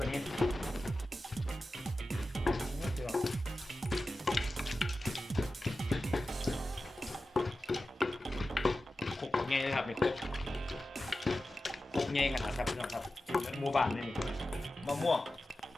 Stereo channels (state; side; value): normal; both; correlation 0.94